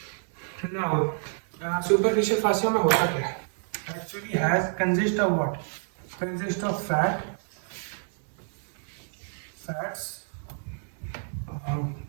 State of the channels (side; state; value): left; silent; 59 dB below the other